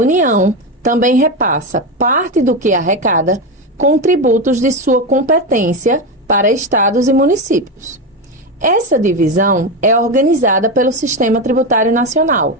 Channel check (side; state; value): both; normal; correlation 0.14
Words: também repassa parte do que arrecada com tributos de sua competência para estados e municípios. Essa divisão é organizada pelo Sistema Tributário Nacional,